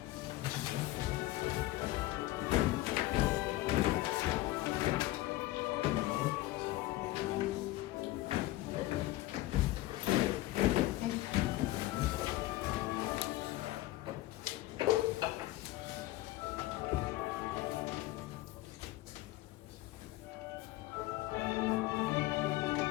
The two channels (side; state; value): right; quieter; 17.2 dB